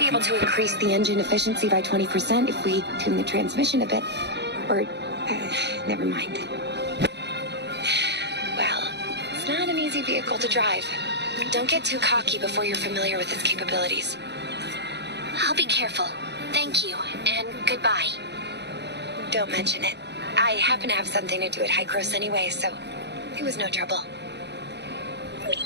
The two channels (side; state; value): left; late; 0.50 ms